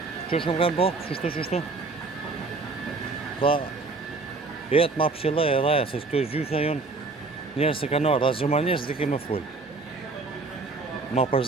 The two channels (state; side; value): quieter; left; 3.8 dB